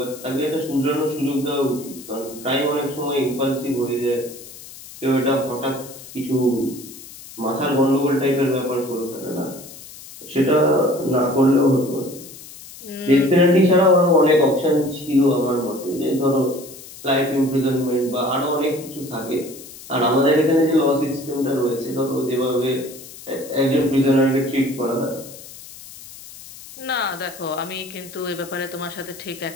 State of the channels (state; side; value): noise; left; hiss, 16 dB below the sound